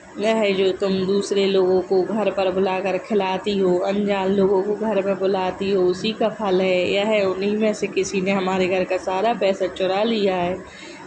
यह जो तुम दूसरे लोगों को घर पर बुलाकर खिलाती हो, अनजान लोगों को घर में बुलाती हो, उसी का फल है। यह उन्हीं में से किसी ने हमारे घर का सारा पैसा चुरा लिया है।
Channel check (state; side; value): identical; both; correlation 1.00